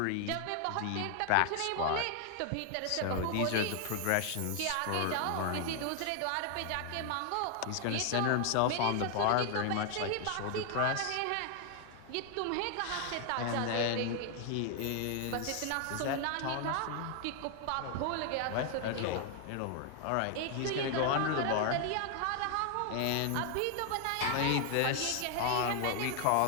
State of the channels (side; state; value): both; different; correlation 0.00